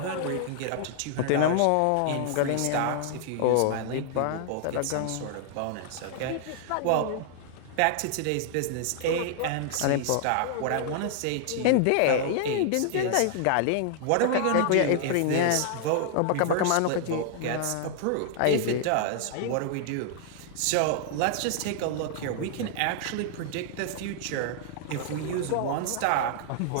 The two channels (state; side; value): different; both; correlation -0.01